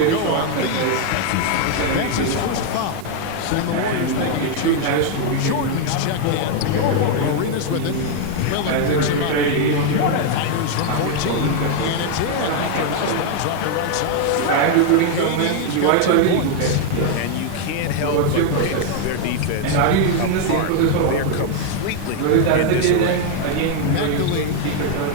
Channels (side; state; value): both; different; correlation 0.00